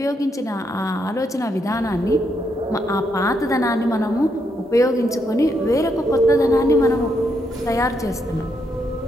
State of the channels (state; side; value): normal; both; correlation 0.78